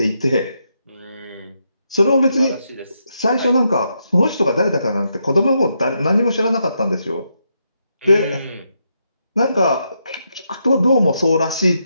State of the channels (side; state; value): both; inverted; correlation -0.81